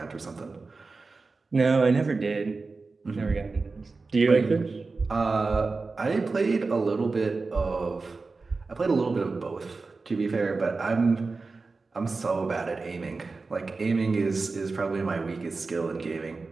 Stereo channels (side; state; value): left; quieter; 4.0 dB